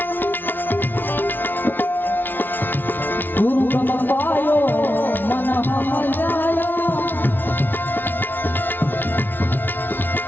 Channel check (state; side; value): late; right; 0.092 ms